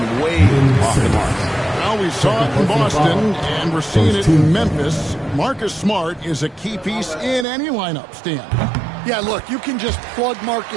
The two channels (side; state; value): left; drops out; at 7.5 s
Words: way off the mark. Well, we saw it in Boston, and we're seeing it in Memphis. Marcus Smart is a key piece in any lineup, Stan. Yeah, look, you can just plug